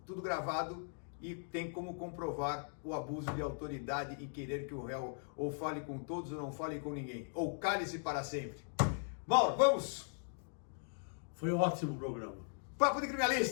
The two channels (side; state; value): right; silent; digital silence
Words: tudo gravado e tem como comprovar o abuso de autoridade em querer que o réu ou fale com todos ou não fale com ninguém, ou cale-se para sempre. Mauro, vamos! Foi um ótimo programa. Papo de